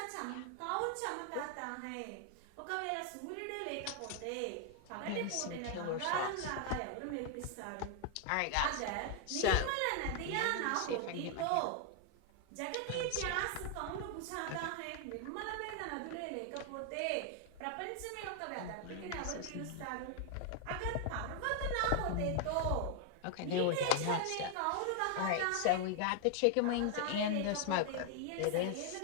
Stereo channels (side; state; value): both; different; correlation 0.00